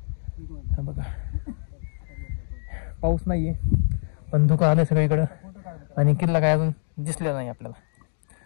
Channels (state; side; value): silent; right; digital silence